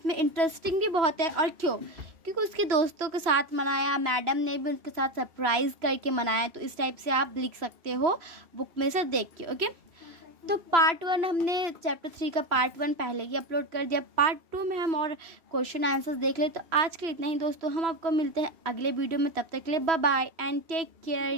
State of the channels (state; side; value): late; left; 3.0 ms